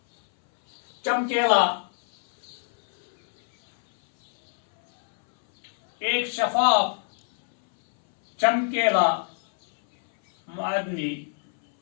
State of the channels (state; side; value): silent; right; 62 dB below the other